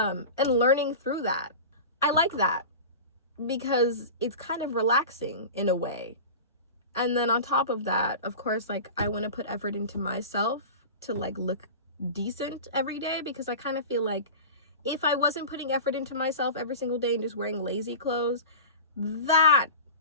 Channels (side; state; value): both; inverted; correlation -0.32